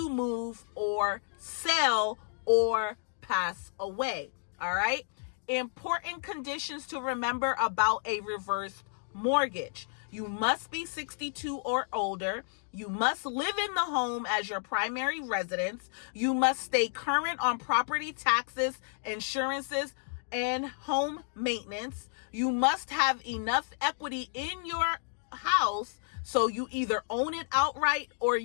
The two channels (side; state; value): right; silent; digital silence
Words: move or sell, or pass away. All right. Important conditions to remember about a reverse mortgage. You must be 62 or older. You must live in the home as your primary residence. You must stay current on property taxes, insurances, and home maintenance. You must have enough equity in your house so you either own it outright or